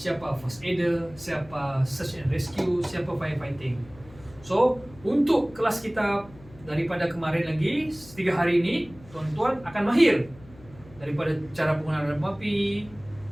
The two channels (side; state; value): left; noise; hum, 22 dB below the sound